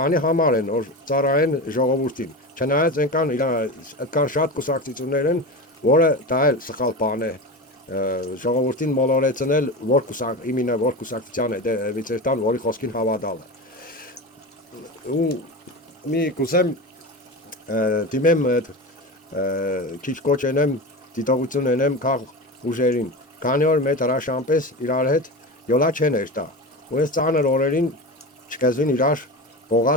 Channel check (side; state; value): both; normal; correlation 0.25